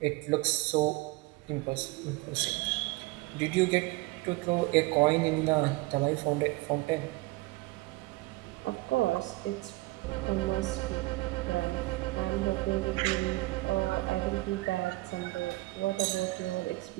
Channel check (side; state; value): left; quieter; 21.7 dB